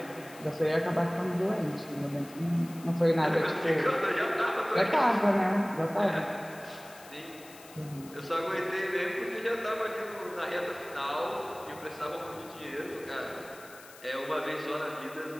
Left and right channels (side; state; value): left; noise; hiss, 20 dB below the sound